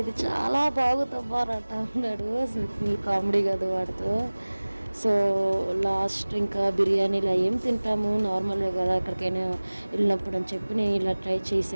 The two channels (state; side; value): inverted; both; correlation -1.00